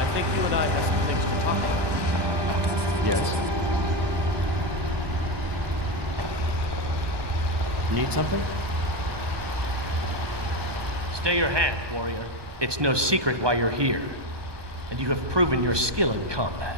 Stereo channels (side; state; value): left; late; 1.2 ms